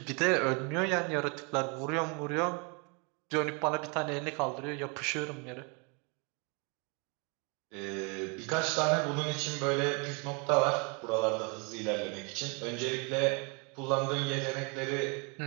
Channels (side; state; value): left; quieter; 33.0 dB